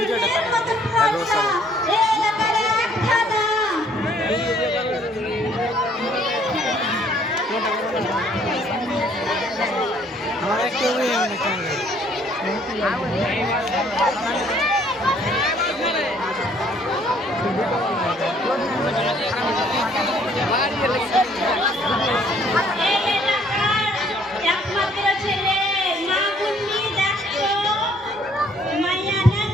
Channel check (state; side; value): normal; both; correlation 0.61